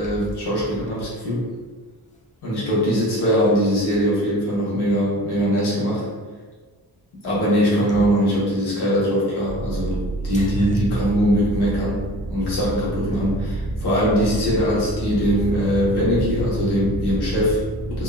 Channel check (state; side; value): normal; both; correlation 0.42